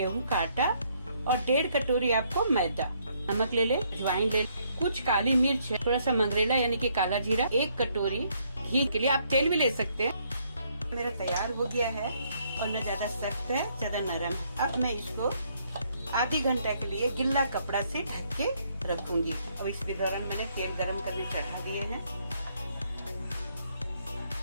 का आटा और 1.5 कटोरी आपको मैदा। नमक ले ले, अजवाइन ले, कुछ काली मिर्च, थोड़ा सा मंगरेला यानी कि काला जीरा, 1 कटोरी घी, के लिए आप तेल भी ले सकते हैं। मेरा तैयार हो गया है और न ज्यादा सख्त है ज्यादा नरम। अब मैं इसको आधी घंटा के लिए गिल्ला कपड़ा से ढक के रखूंगी। अब इस दौरान मैंने तेल गरम करने चढ़ा दिए हैं।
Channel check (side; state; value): both; inverted; correlation -0.70